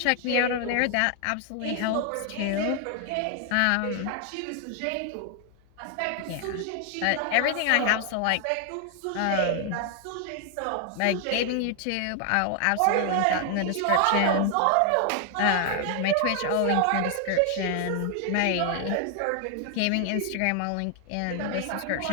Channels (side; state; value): both; different; correlation 0.00